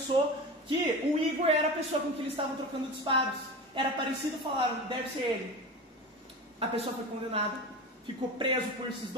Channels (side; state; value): both; normal; correlation 0.28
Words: que o Igor era a pessoa com quem eles estavam trocando disparos. Era parecido, falaram, deve ser ele. A pessoa foi condenada, ficou preso por esses